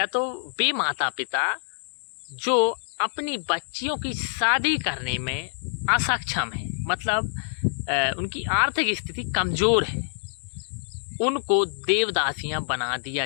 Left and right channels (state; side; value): silent; right; digital silence